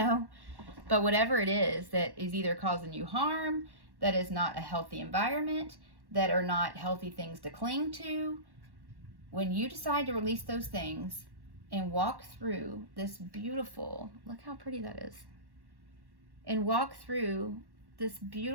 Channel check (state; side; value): late; left; 1.1 ms